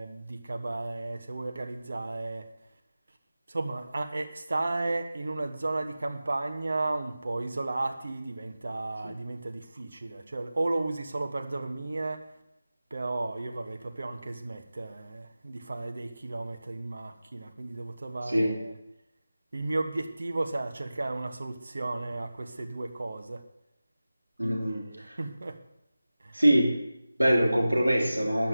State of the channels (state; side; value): inverted; both; correlation -0.96